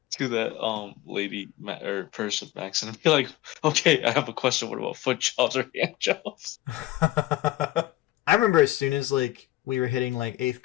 that lady or person, Max, and be like, okay, I have a question. What about foot jobs or hand jobs? I remember as soon as like we were hitting like 8th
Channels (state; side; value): quieter; right; 16.7 dB